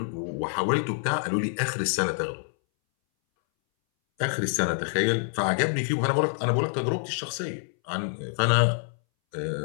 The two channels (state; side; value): silent; right; 60 dB below the other